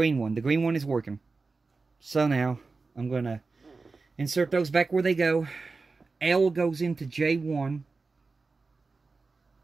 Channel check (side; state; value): left; quieter; 4.0 dB